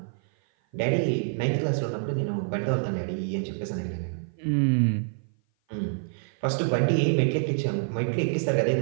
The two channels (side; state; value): left; silent; 56 dB below the other